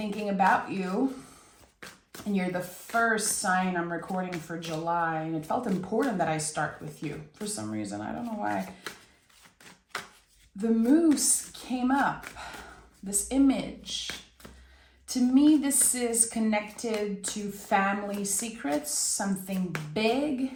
about you, and you're the first sign I'm recording for July, and it felt important that I start with you for some reason. I don't know why. The moose came up, this image. To me, this is connected to family secrets, something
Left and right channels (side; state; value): both; identical; correlation 1.00